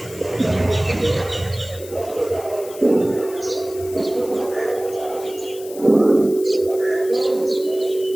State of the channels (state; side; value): noise; left; hiss, 17 dB below the sound